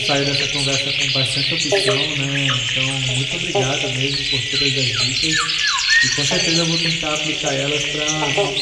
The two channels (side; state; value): both; identical; correlation 1.00